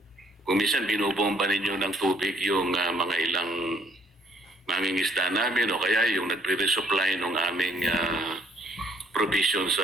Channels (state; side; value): normal; both; correlation 0.65